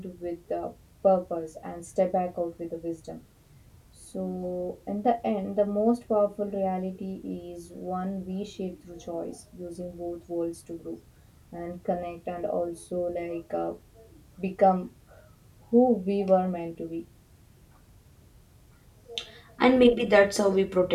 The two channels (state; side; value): identical; both; correlation 1.00